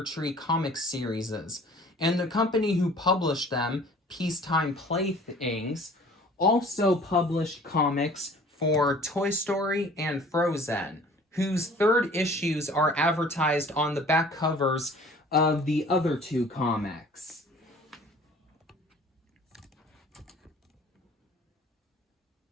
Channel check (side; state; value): both; normal; correlation 0.49